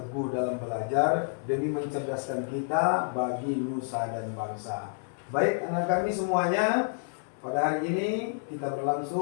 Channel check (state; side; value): silent; right; 58 dB below the other